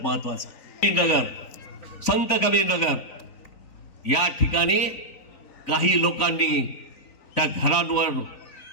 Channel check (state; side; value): late; right; 3.9 ms